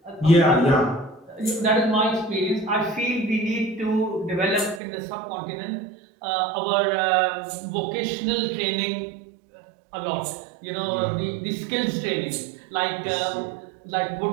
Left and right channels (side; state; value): left; drops out; at 4.8 s